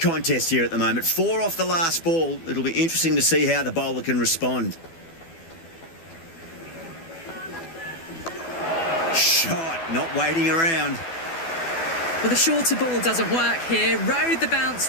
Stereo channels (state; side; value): late; right; 12 ms